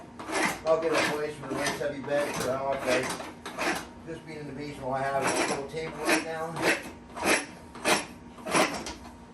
I'll get a place with a nice heavy bed for the house. Just being in the basement, I have a little table right now.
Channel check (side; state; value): both; identical; correlation 1.00